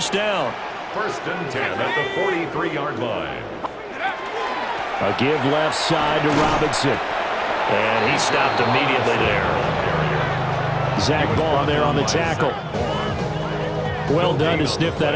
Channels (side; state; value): both; identical; correlation 1.00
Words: down. First and 10 at the 43-yard line. A give left side to Robinson. And he stopped immediately there. Zach Ball there on the tackle. Well done to sniff that